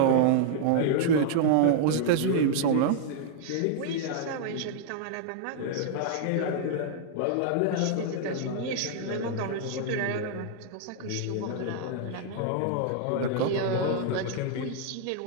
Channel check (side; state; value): both; different; correlation -0.01